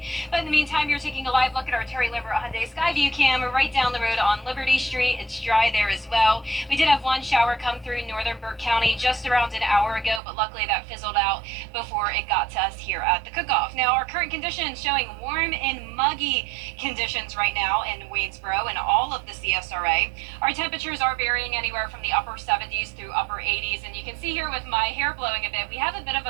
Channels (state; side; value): drops out; left; at 10.2 s